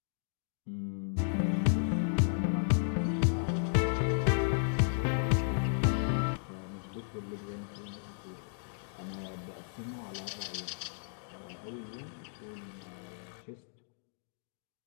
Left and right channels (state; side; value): silent; right; digital silence